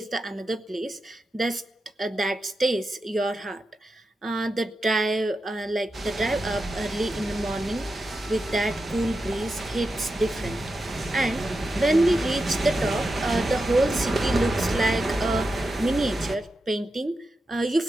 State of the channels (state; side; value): normal; both; correlation 0.89